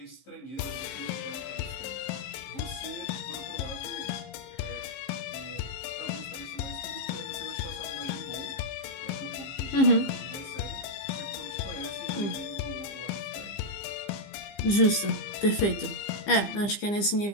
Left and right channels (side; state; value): right; late; 15 ms